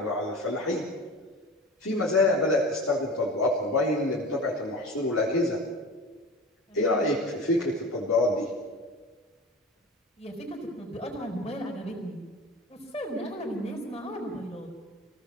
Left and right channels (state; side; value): normal; both; correlation 0.35